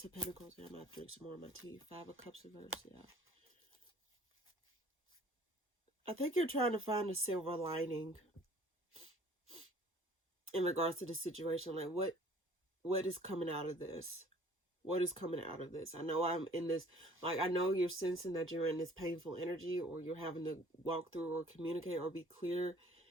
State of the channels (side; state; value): both; normal; correlation 0.53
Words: of Pentacles here? I'm going to drink some more of my tea. 5 of Cups reverse, yeah. I think you're trying to find a silver lining in regards to the situation. Like, what is coming out of this? What is coming out of this? I know I'm in this, like, I know you're sensing that you're in this painful energy, or you're having to walk through or communicate or be clear